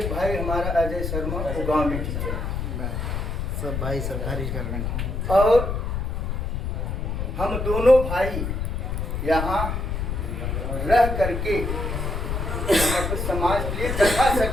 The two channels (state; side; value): noise; left; rumble, 2 dB below the sound